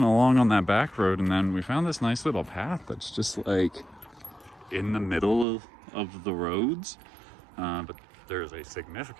along on that back road, and then we found this nice little path that's just like in the middle of the roads, but there's a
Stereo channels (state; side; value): drops out; left; at 5.5 s